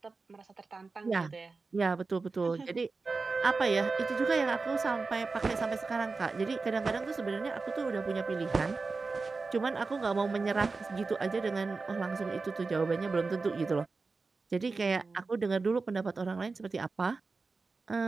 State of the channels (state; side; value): quieter; left; 4.1 dB